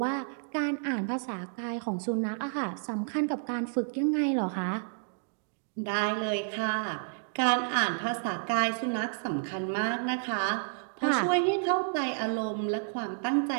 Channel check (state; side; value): silent; left; digital silence